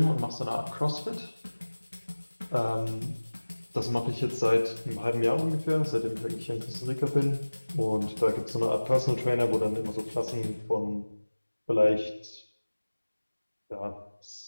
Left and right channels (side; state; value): both; inverted; correlation -1.00